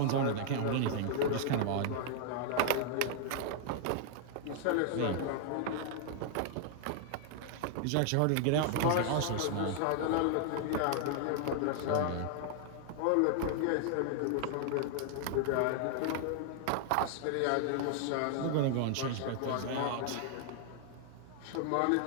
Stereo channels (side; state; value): both; different; correlation 0.00